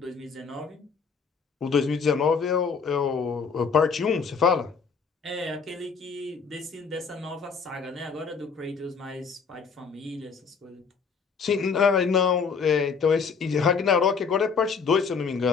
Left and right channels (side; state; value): right; quieter; 5.5 dB